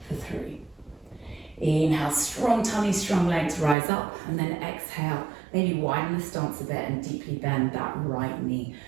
for 3. Inhale, strong tummy, strong legs, rise up, and then exhale. Maybe widen the stance a bit and deeply bend that right knee,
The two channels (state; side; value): drops out; left; at 3.8 s